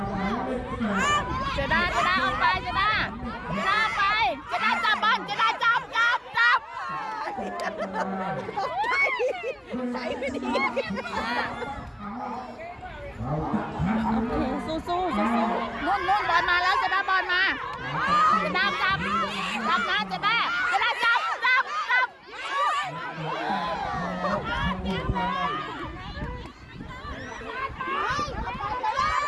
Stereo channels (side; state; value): both; identical; correlation 1.00